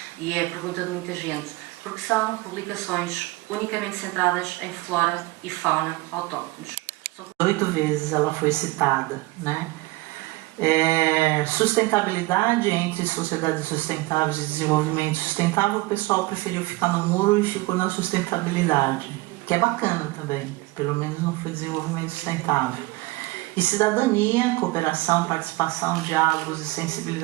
e é a pergunta de muita gente. Porque são publicações unicamente centradas em flora e fauna autóctones. 8 vezes ela foi citada, né? Sustentabilidade entre sociedades sustentáveis e desenvolvimento sustentável, o pessoal preferiu ficar no muro e ficou na sustentabilidade, que é bacana também, pelo menos não foi desenvolvimento sustentável. E cidadania, cooperação, participação, diálogos e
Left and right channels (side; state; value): left; quieter; 21.2 dB